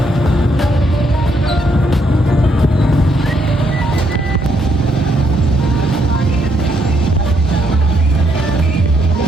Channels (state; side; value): normal; both; correlation 0.74